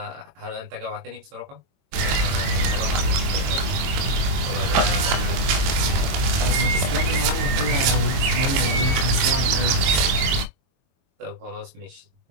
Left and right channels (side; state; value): left; late; 22 ms